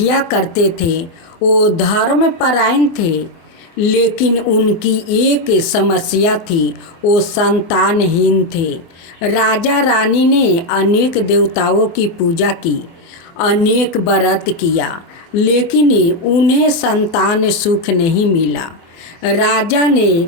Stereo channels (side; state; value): right; late; 24 ms